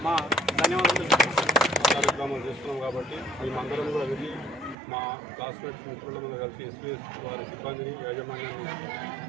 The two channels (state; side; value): drops out; left; at 4.8 s